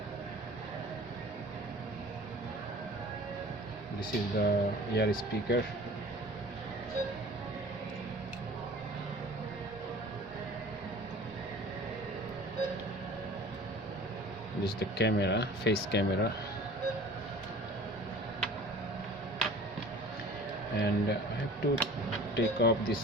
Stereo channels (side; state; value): both; normal; correlation 0.43